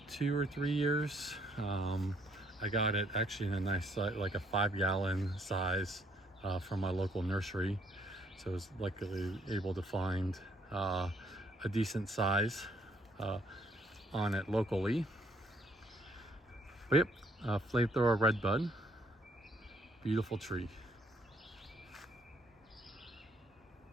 2 or 3 years. I got it actually in a nice, like a 5-gallon size from my local nursery. So I was luckily able to find a decent size on it locally. But yep, Flamethrower Redbud, beautiful tree.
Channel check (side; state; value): both; normal; correlation 0.67